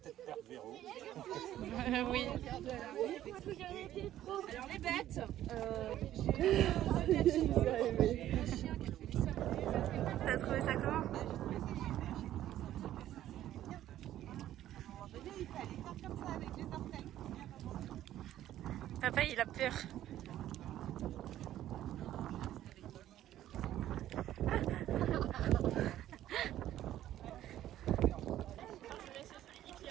perdre Véro. Oui. Alors les bêtes. T'as trouvé ça comment? Il fallait faire comme ça avec les orteils. Papa il a peur.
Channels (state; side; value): quieter; left; 12.7 dB